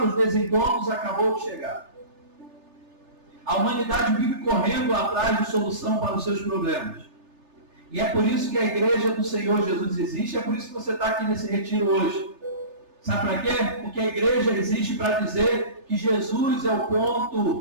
os desencontros acabou de chegar. A humanidade vive correndo atrás de solução para os seus problemas. E é por isso que a igreja do Senhor Jesus existe, é por isso que você está aqui nesse retiro hoje. Sabe para quê? Porque a igreja existe para dizer que Jesus é o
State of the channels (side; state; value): left; late; 3.3 ms